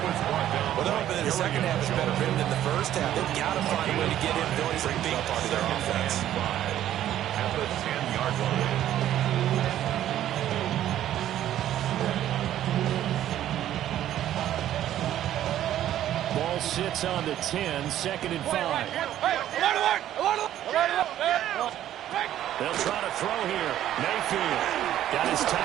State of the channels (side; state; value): left; quieter; 12.1 dB